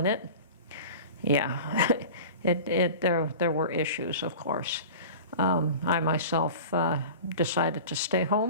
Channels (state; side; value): inverted; both; correlation -0.36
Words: it, yeah, there were issues, of course. I myself decided to stay